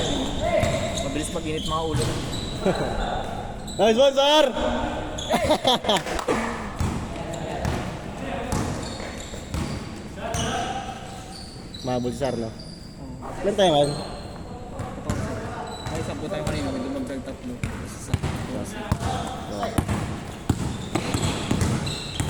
Mabilis mag-init mga ulo. Nice one, sir! Mahabol si Sar, no? Ilan tayo ngayon? Ay, sampo tayo kanina, may dumagdag tatlo.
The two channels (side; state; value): both; identical; correlation 1.00